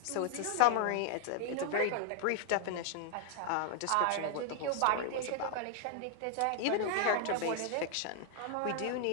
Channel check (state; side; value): different; both; correlation 0.00